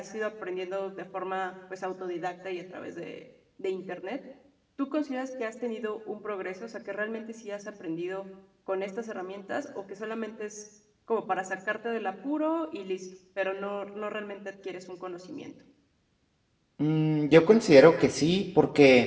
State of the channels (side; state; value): both; identical; correlation 1.00